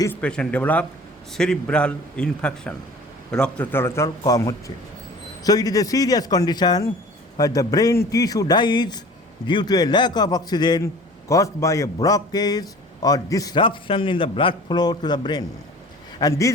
This patient developed cerebral infarction. রক্ত চলাচল কম হচ্ছে। So it is a serious condition where the brain tissue dies due to a lack of oxygen caused by a blockage or disruption in the blood flow to the brain. And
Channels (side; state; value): both; normal; correlation 0.44